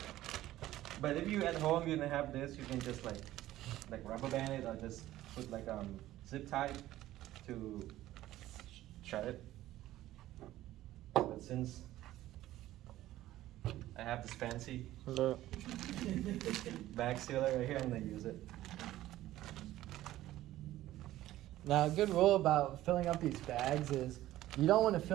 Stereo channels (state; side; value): quieter; left; 14.8 dB